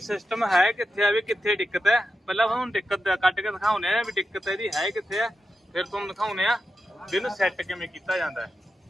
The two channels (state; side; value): normal; both; correlation 0.90